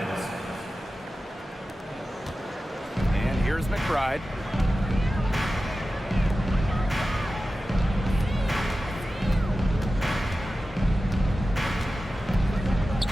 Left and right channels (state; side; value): normal; both; correlation 0.94